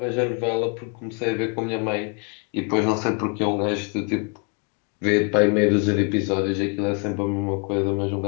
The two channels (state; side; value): quieter; right; 35.6 dB